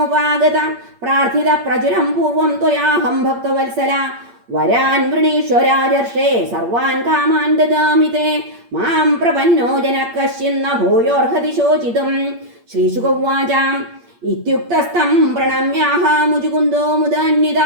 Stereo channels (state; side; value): late; left; 8.6 ms